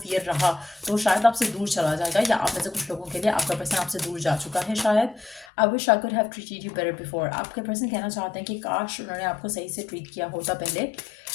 रहा तो शायद आपसे दूर चला जाएगा, या आप में से कुछ लोगों के लिए आपका पर्सन आपसे दूर जा चुका है शायद। I wish I could have treated you better before. आपके पर्सन कहना चाहते हैं कि काश उन्होंने आपको सही से ट्रीट किया होता पहले।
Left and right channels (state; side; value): drops out; right; at 5.5 s